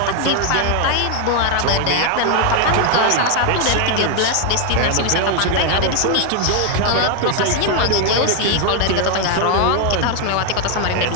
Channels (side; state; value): both; different; correlation 0.01